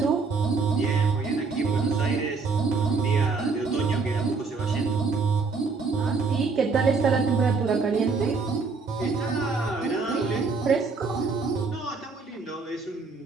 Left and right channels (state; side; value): quieter; left; 4.5 dB